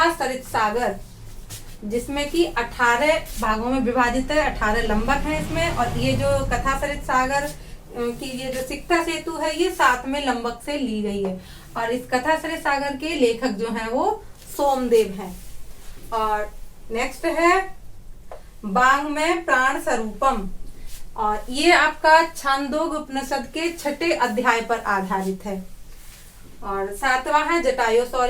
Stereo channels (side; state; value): both; identical; correlation 1.00